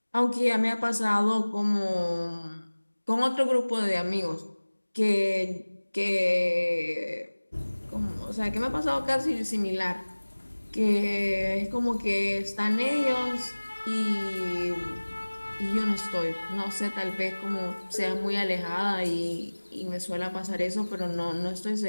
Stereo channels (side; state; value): both; inverted; correlation -1.00